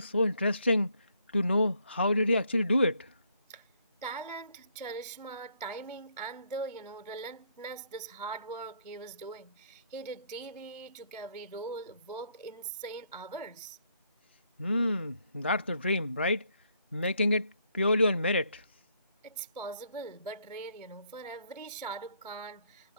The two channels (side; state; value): both; inverted; correlation -0.71